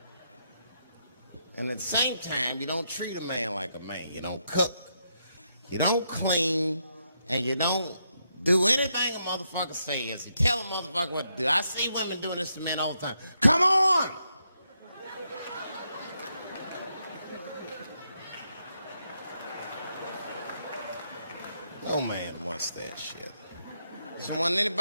And at the same time, you don't treat a man like a man. You don't cook, you don't clean, and you don't do anything a motherfucker says. You tell a motherfucker what to do. I see women doing this to men all the time. Come on! No man wants that shit. I don't want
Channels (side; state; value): both; inverted; correlation -0.80